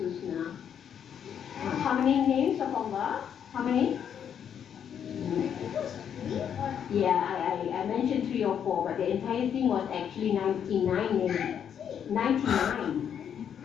How many names of Allah? How many? Yeah, I mentioned 3 or 4, but the entire thing was actually 99 names. 99.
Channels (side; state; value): right; quieter; 8.5 dB